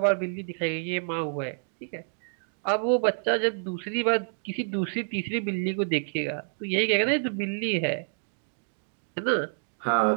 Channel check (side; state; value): left; silent; digital silence